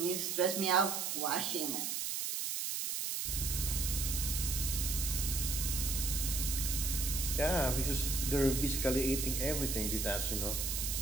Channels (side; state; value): right; noise; hiss, 1 dB below the sound